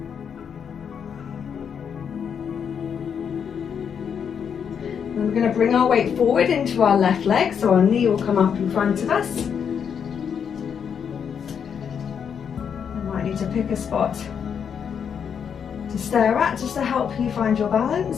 And we're going to bring our weight forward into our left leg, so our knee will come up in front of us. You might need to pick a spot to stare at just to help you find your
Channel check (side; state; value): right; quieter; 7.4 dB